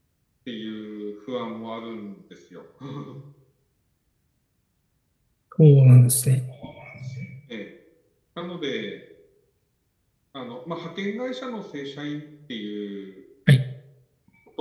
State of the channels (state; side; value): identical; both; correlation 1.00